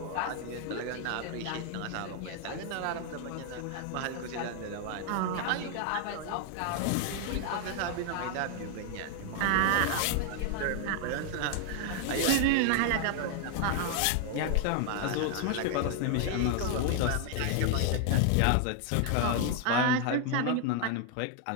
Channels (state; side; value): different; both; correlation 0.00